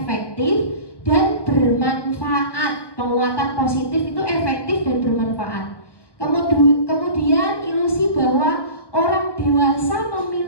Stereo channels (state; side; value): late; right; 1.1 ms